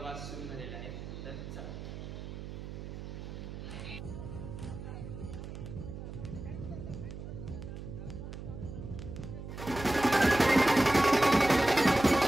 सुरू झालेला आहे। तर चला।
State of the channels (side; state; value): right; noise; hum, 9 dB below the sound